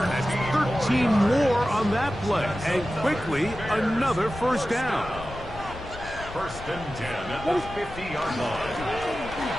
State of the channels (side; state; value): left; noise; rumble, 14 dB below the sound